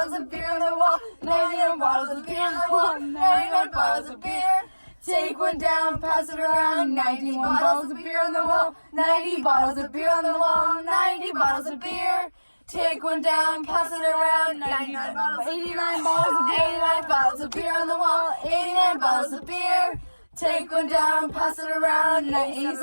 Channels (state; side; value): inverted; both; correlation -1.00